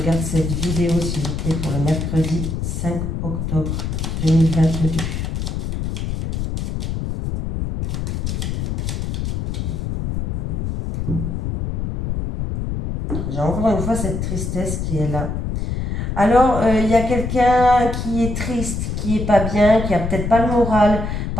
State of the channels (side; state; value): left; noise; rumble, 3 dB below the sound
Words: cette vidéo, s'il vous plaît. Pour le mercredi 5 octobre 2022. J'ai encore une fois cette tristesse qui est là. Alors, il y a quelqu'un qui est triste, qui est pas bien, qui a peut-être pas le moral